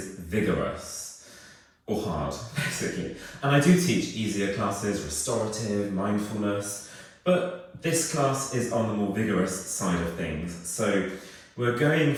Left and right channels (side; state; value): both; identical; correlation 1.00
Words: vigorous, or hard, basically. And I do teach easier classes, restorative, mindfulness, but this class is on the more vigorous side of things. So we're going